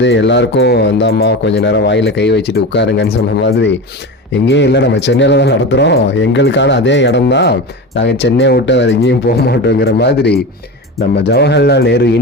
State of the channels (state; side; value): normal; both; correlation 0.26